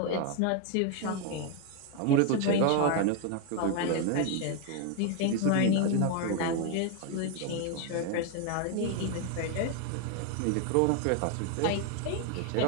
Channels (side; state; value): both; different; correlation 0.01